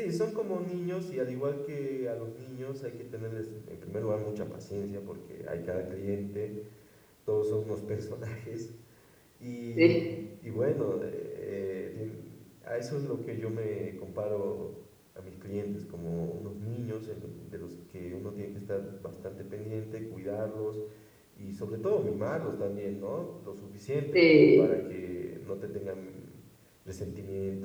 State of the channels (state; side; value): identical; both; correlation 1.00